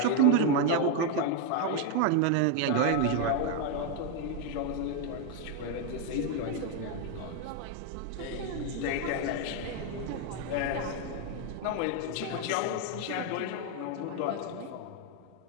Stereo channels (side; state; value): both; different; correlation 0.01